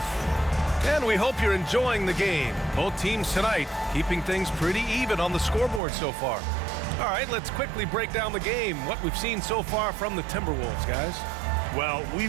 And we hope you're enjoying the game. Both teams tonight keeping things pretty even on the scoreboard so far. All right, let's quickly break down the game, what we've seen so far from the Timberwolves, guys. Well,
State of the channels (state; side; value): drops out; left; at 5.8 s